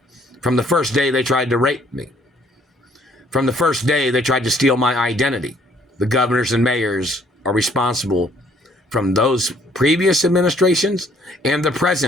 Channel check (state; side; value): normal; both; correlation 0.63